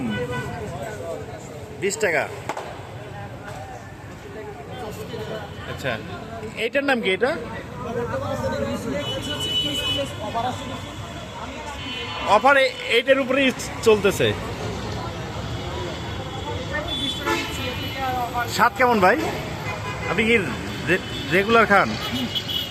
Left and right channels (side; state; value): both; identical; correlation 1.00